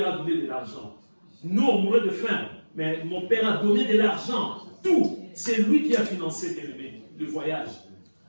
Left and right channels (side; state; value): both; inverted; correlation -1.00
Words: a donné de l'argent. Nous, on mourrait de faim, mais mon père a donné de l'argent. Tout. C'est lui qui a financé, bien aimé, le voyage.